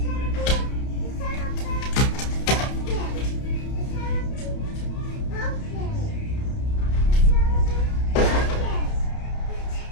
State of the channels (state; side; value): late; right; 31 ms